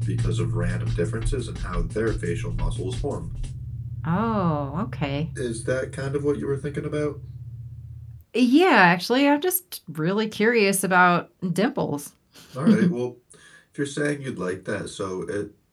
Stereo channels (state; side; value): identical; both; correlation 1.00